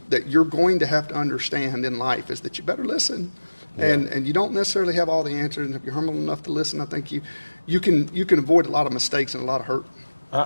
you're going to have to understand in life is that you better listen. And you don't necessarily have all the answers, and if you're humble enough to listen, I think you can avoid a lot of mistakes and a lot of hurt.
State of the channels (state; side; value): inverted; both; correlation -1.00